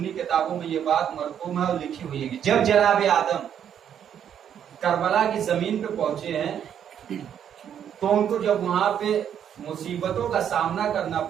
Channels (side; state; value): left; quieter; 9.1 dB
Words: کتابوں میں یہ بات مرقوم ہے اور لکھی ہوئی ہے کہ جب جناب آدم کربلا کی زمین پہ پہنچے ہیں تو ان کو جب وہاں پہ مصیبتوں کا سامنا کرنا